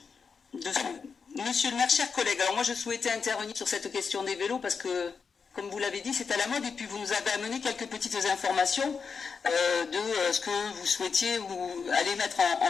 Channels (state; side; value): quieter; right; 5.6 dB